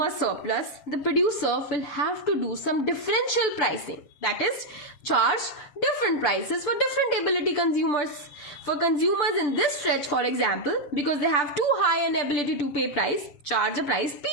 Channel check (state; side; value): late; right; 7.2 ms